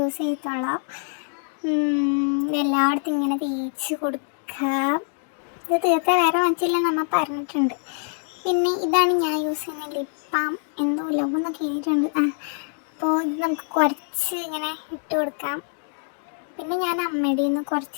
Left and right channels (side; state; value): right; silent; 61 dB below the other